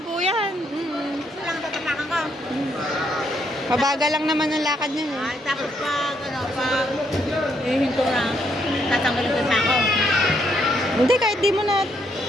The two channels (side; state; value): both; normal; correlation 0.74